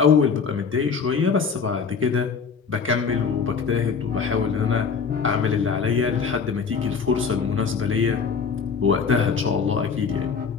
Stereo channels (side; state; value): right; quieter; 5.8 dB